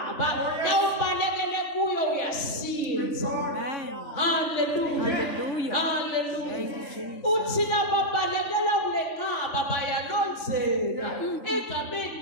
nawubalekele kuyo uyasinza. Hallelujah. Hallelujah. Hallelujah. Thank you, Jesus. Uthi lababalekela kulenqaba bayalonzeka egameni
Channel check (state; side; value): late; right; 3.4 ms